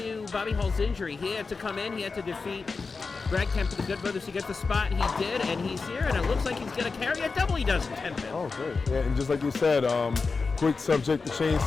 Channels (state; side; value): quieter; right; 4.4 dB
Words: Bobby Hall's injury. He had to come in, he had to defeat Brad Kemp for the Good Brothers to get the spot. He did, and he's here, and it looks like he's going to carry a double. He does in 10 minutes. Oh, great. Yeah, and just like you said, quick subject to change